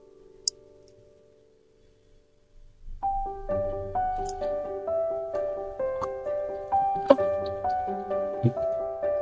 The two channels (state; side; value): identical; both; correlation 1.00